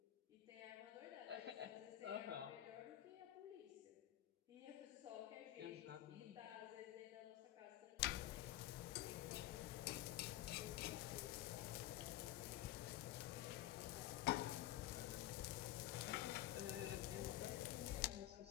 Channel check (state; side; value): quieter; right; 14.2 dB